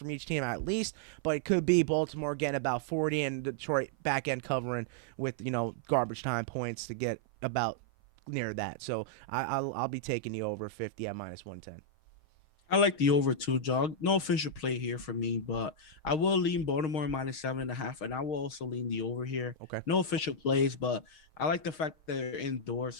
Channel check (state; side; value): late; right; 6.4 ms